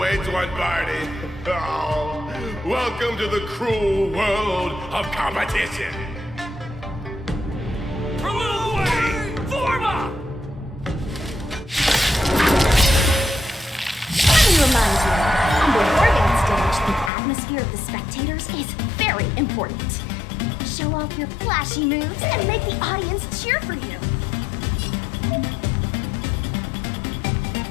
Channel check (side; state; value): right; drops out; at 17.1 s